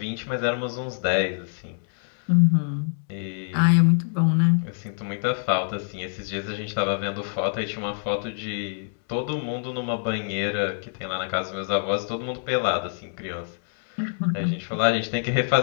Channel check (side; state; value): right; silent; 61 dB below the other